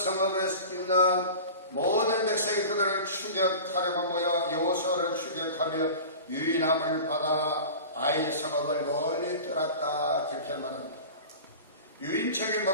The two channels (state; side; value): inverted; both; correlation -0.36